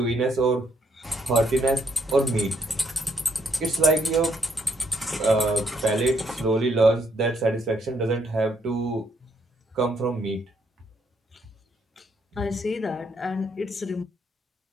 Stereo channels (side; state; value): both; normal; correlation 0.72